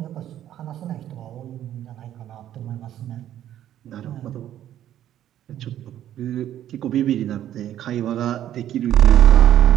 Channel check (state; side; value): quieter; left; 11.6 dB